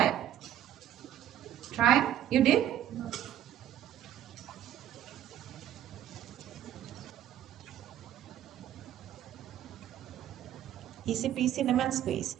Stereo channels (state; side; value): quieter; left; 11.4 dB